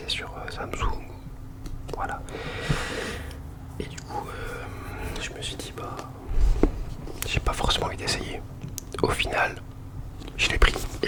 sur Samsung. Voilà. Et du coup, je me suis dit bah, j'ai pas forcément envie d'essayer. Au final, je l'ai pris.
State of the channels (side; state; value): both; identical; correlation 1.00